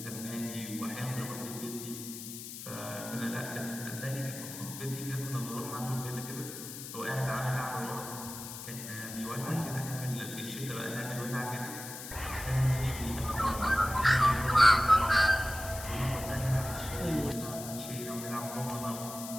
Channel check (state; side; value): noise; left; hiss, 10 dB below the sound